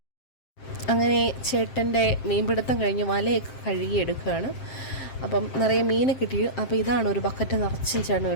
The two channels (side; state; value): right; late; 7.6 ms